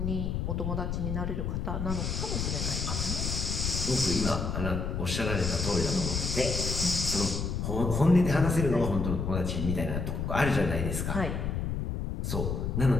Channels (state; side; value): noise; left; rumble, 2 dB below the sound